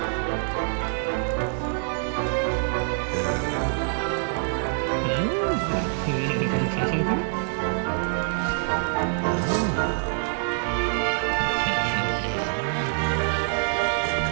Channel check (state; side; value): silent; left; digital silence